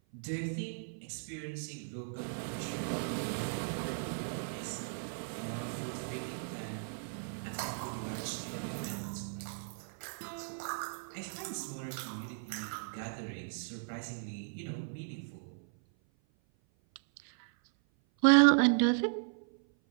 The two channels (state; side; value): silent; left; 54 dB below the other